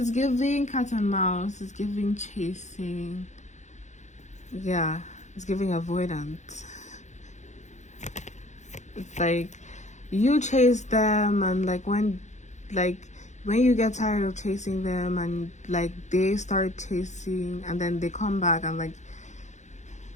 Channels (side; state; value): right; late; 0.34 ms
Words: giving cat and mouse, it's giving chasing. Yeah, it's giving avoidance. It's like you chase them, and like when you get tired of chasing them and like they start chasing, and then they come back and like,